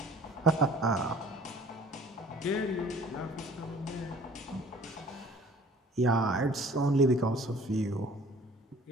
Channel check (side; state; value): both; normal; correlation 0.51